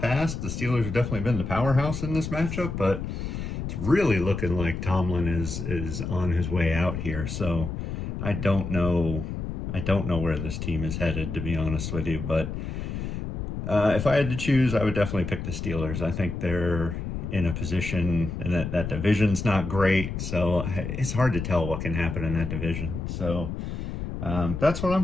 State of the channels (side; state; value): left; noise; rumble, 5 dB below the sound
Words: the Steelers have definitely been the powerhouse in this matchup, but it's really looking like Tomlin is on his way out here. So I don't know where this team is headed, to be honest with you. But if I had to choose, I would definitely pick the Steelers. I think they're in a position, and that division's not great, so it's hard to tell what can happen in that division. So that's what